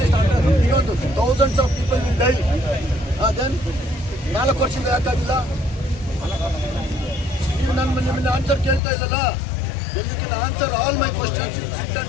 beyond thousands of people will die. Then 4 ವರ್ಷದಿಂದ ಯಾಕಾಗಿಲ್ಲ? ನೀವು ನಿಮ್ಮನ್ನ ಆನ್ಸರ್ ಕೇಳ್ತಾ ಇಲ್ಲಲ್ಲ. When you can answer all my questions, you sit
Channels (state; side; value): drops out; right; at 8.8 s